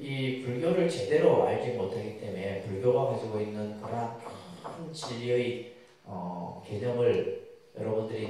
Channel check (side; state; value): both; identical; correlation 1.00